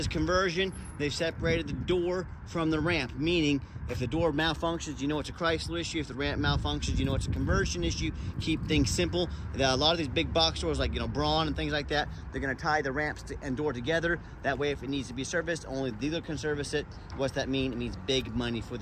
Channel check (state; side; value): identical; both; correlation 1.00